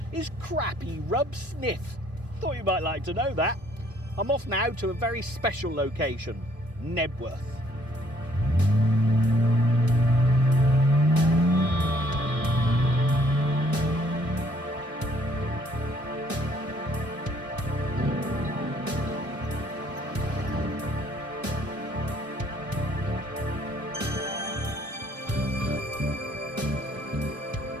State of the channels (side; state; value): both; normal; correlation 0.64